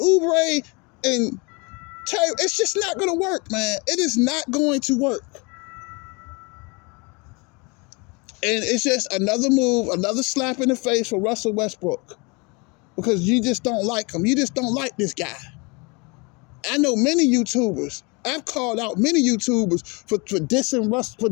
and Terry, it's just not going to work, man. It is not going to work. And it's just another move, another slap in the face for Russell Westbrook. Because you just don't like him. You just don't like this guy. I know many YouTubers. I've called out many YouTubers for dissing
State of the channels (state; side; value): quieter; right; 29.5 dB